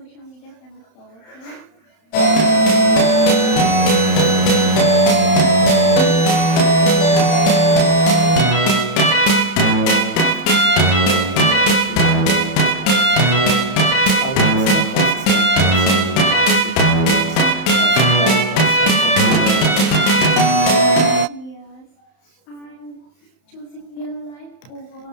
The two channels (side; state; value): right; late; 31 ms